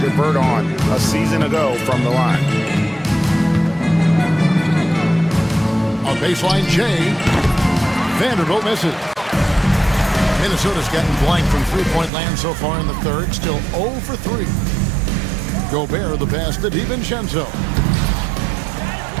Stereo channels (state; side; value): drops out; left; at 12.1 s